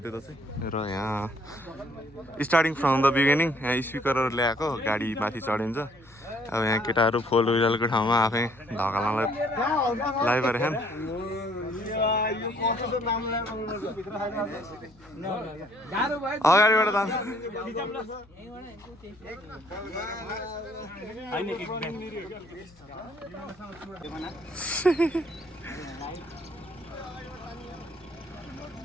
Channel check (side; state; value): left; noise; hum, 27 dB below the sound